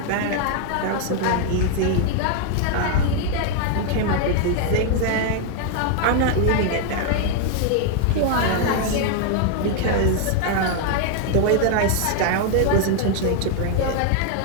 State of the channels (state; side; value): different; both; correlation 0.00